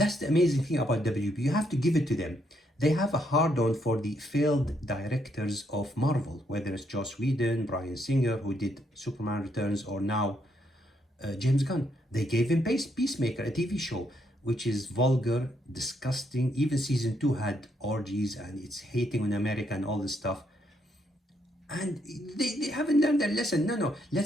the amazing thing about WB. You have to give it to them. They have a hard-on for the failed directors of Marvel, whether it's Joss Whedon, Bryan Singer, who did Superman Returns, or now James Gunn. They gave him Peacemaker, a TV show, which is vulgar, disgusting. Even season 2 had orgies and it's hating on America and all this stuff. And they haven't learned their lesson. No,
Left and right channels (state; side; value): normal; both; correlation 0.75